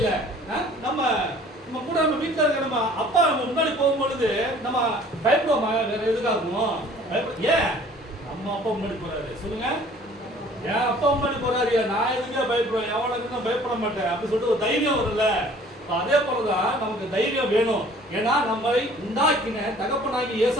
நம்ம கூட நம்ம வீட்டில் இருக்க நம்ம அப்பா நம்ம முன்னாடி போகும்பொழுது நம்ம பயப்படுவோமா? வேற எதுக்காகும்? ஏன் நம்ம அப்பா முன்னாடி போறாரு? சொல்லுங்க. ஏன் அப்பா முன்னாடி போறாரு, நான் எதுக்கே பயப்படுவேன், எவனுக்கு நான் பயப்பட மாட்டேன் அப்படின்னு சொல்லிட்டு ஒரு தைரியம் வரும்ல. அதே போலதான் நமக்கு தைரியம் வேணும். ஏன்னா நம்மளை உண்டாக்கின தகப்பனாகி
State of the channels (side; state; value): both; normal; correlation 0.52